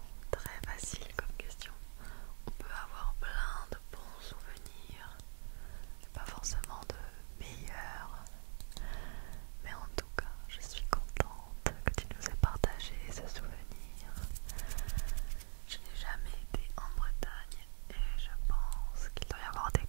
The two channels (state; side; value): silent; left; digital silence